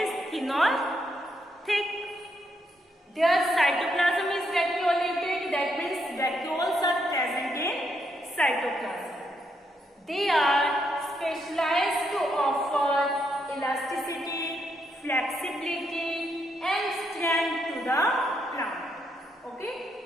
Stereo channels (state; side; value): normal; both; correlation 0.78